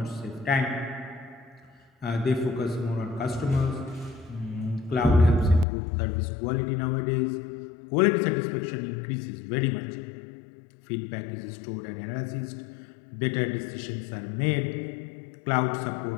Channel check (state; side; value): drops out; right; at 5.7 s